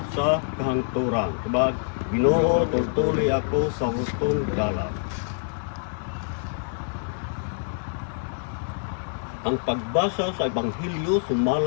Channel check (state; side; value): silent; right; digital silence